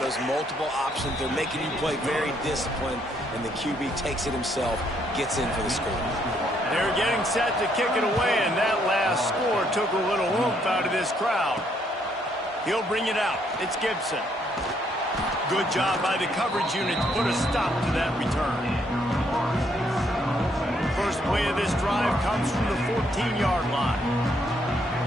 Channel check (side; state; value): both; normal; correlation 0.71